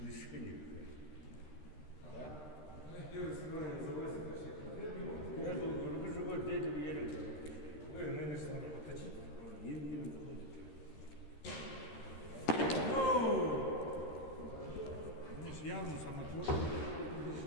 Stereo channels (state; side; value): late; right; 13 ms